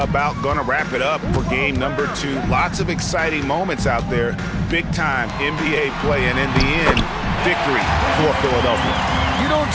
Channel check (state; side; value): identical; both; correlation 1.00